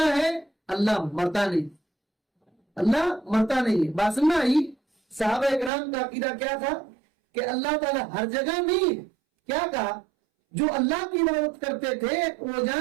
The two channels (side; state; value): left; drops out; at 5.7 s